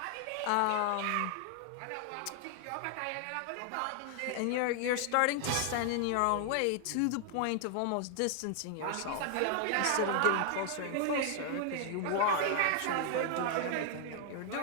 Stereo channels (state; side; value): different; both; correlation 0.00